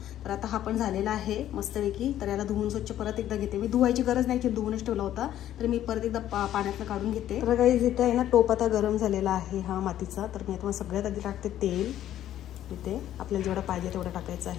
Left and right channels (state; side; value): quieter; right; 12.1 dB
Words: तर आता हा पण झालेला आहे मस्तपैकी। तर याला धुवून स्वच्छ परत एकदा घेते मी, धुवायची गरज नाही की धुवूनच ठेवला होता, तर मी परत एकदा पाण्यातनं काढून घेते। तर गाईस इथे आहे ना टोप आता गरम झालेला आहे हा मातीचा। तर मी आता सगळ्यात आधी टाकते तेल। इथे आपल्याला जेवढं पाहिजे तेवढं टाकायचं